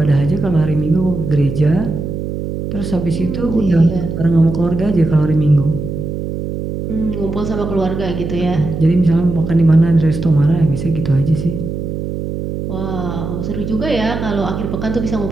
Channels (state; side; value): noise; right; hum, 5 dB below the sound